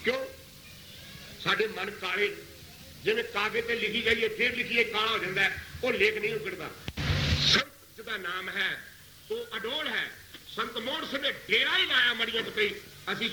ਕਿਉਂ? ਸਾਡੇ ਮਨ ਕਾਲੇ, ਜਿਵੇਂ ਕਾਗਜ਼ ਤੇ ਲਿਖੀ ਜਾਈਏ ਫਿਰ ਲਿਖੀਏ ਕਾਲਾ ਹੋ ਜਾਂਦਾ, ਉਹ ਲੇਖ ਨਹੀਂ ਉਗੜਦਾ। ਸੰਤ ਜਿਹਦਾ ਨਾਮ ਹੈ ਉਹ ਅਡੋਲ ਹੈ। ਸੰਤ ਮੋਹਨ ਸਿੰਘ ਨੇ ਡੇਰਾ ਹੀ ਲਾਇਆ ਮੜੀਆਂ ਤੇ, ਅਸੀਂ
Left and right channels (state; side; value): identical; both; correlation 1.00